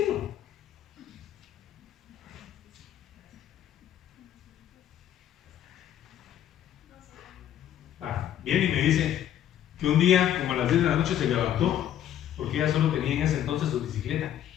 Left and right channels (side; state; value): right; quieter; 11.0 dB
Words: Viene y me dice que un día, como a las 10 de la noche, se levantó, porque ella solo tenía en ese entonces su bicicleta.